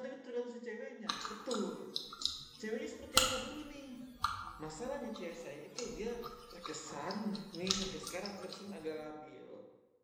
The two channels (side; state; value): both; identical; correlation 1.00